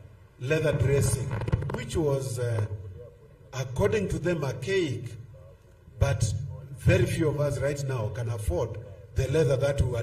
dressing, which was, according to them, archaic, but very few of us right now can afford the leather that we were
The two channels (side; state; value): both; identical; correlation 1.00